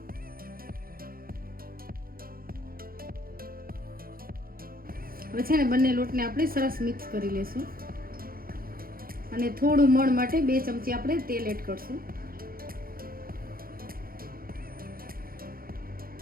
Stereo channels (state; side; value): late; left; 0.42 ms